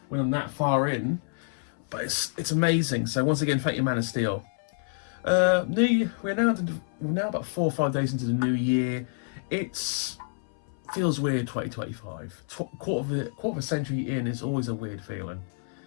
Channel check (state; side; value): silent; right; 59 dB below the other